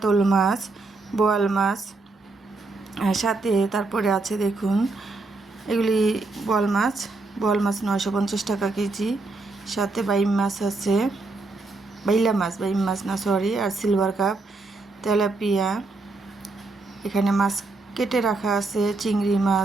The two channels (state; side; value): quieter; left; 3.5 dB